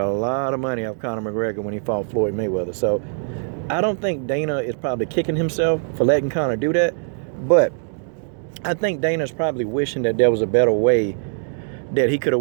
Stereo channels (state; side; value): silent; left; 64 dB below the other